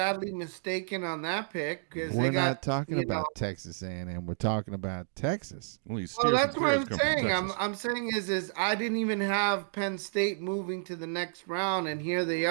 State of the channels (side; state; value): left; silent; digital silence